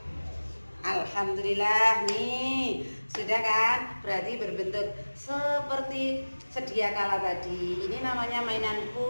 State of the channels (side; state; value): both; inverted; correlation -1.00